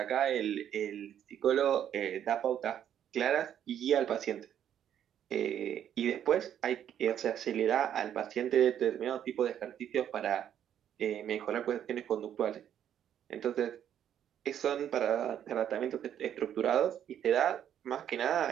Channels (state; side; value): quieter; left; 9.9 dB